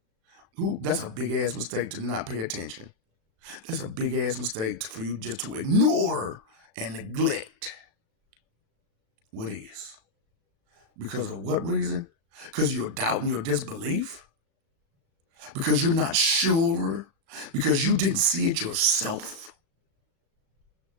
That's a big ass mistake to not pay attention. That's a big ass mistake for you just to ignore and neglect What is? Because of what reason? Because you're doubting your disbelief? Because you're not sure? Because you didn't see it yourself?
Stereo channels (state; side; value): late; left; 35 ms